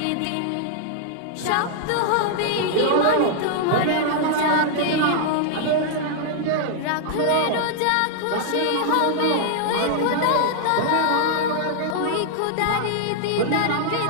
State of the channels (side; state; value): both; different; correlation -0.01